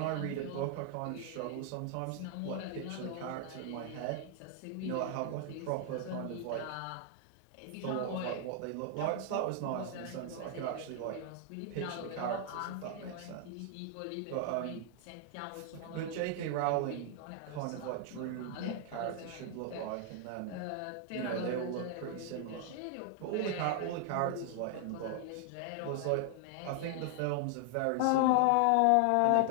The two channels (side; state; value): both; different; correlation 0.00